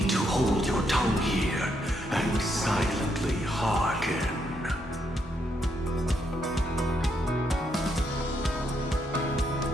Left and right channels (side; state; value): both; normal; correlation 0.77